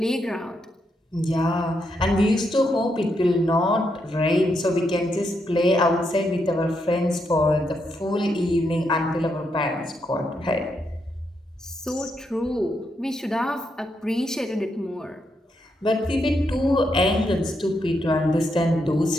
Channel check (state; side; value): normal; both; correlation 0.80